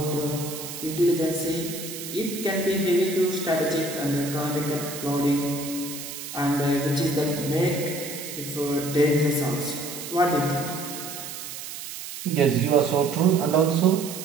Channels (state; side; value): noise; right; hiss, 9 dB below the sound